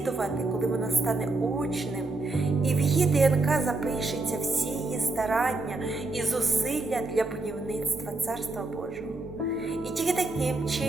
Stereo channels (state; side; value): quieter; left; 3.2 dB